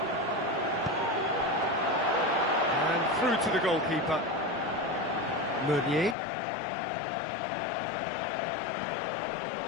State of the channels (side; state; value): right; drops out; at 6.2 s